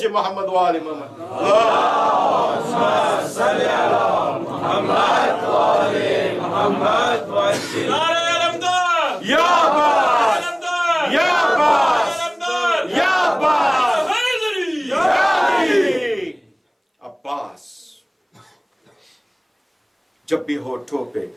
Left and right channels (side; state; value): both; identical; correlation 1.00